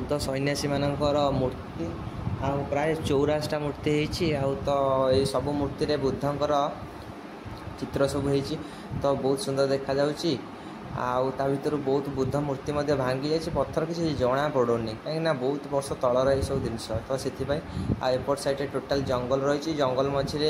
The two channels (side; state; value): both; identical; correlation 1.00